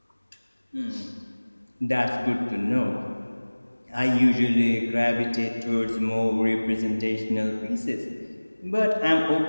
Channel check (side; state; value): both; inverted; correlation -1.00